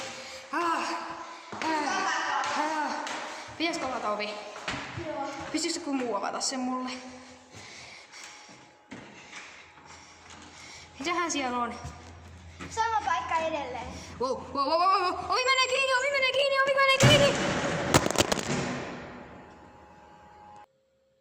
Pitäisikö avata ovi? Joo. Pystyisikö joku muu avata sen mulle? Mitähän siellä on? Sama paikka edelleen. Wow. Ovi menee kiinni!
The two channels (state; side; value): identical; both; correlation 1.00